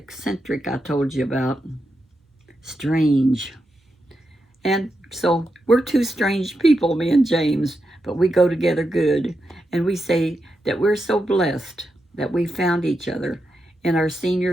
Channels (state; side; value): normal; both; correlation 0.86